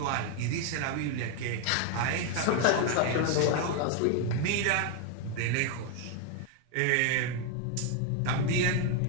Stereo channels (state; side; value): different; both; correlation 0.01